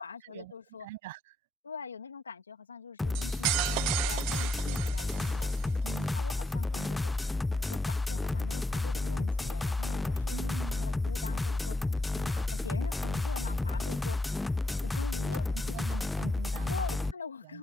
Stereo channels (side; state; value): both; normal; correlation 0.82